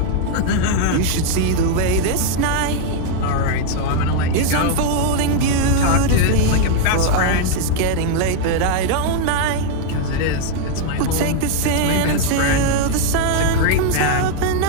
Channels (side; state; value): both; different; correlation 0.00